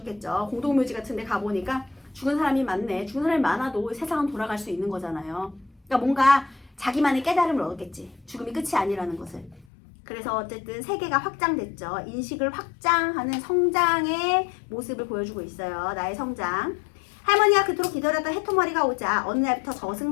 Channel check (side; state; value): right; drops out; at 9.7 s